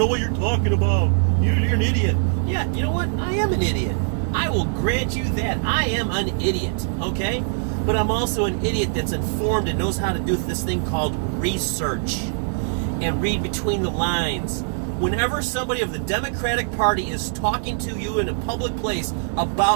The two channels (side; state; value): left; silent; 64 dB below the other